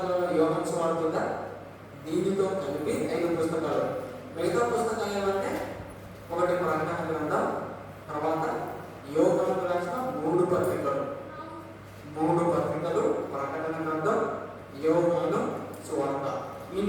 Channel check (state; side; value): identical; both; correlation 1.00